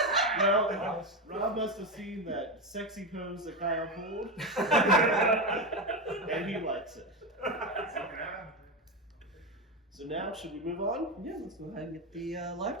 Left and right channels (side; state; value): both; normal; correlation 0.15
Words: Well, Rob must have seen that sexy pose that Kyle pulled, and he likes it. So now, should we move on? Yeah, let's go ahead and get the live